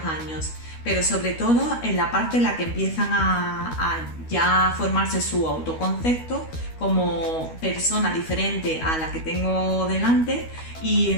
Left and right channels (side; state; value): right; late; 12 ms